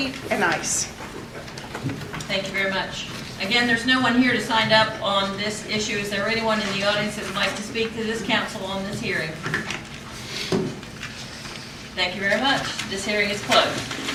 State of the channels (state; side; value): identical; both; correlation 1.00